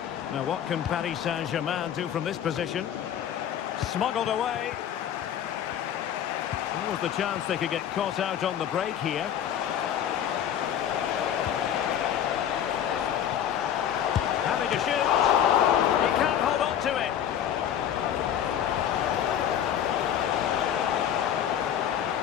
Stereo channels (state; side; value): quieter; right; 9.8 dB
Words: Now, what can Paris Saint-Germain do from this position? Smuggled away. What was the chance they could get caught out on the break here? Having to shoot. He can't hold on to it.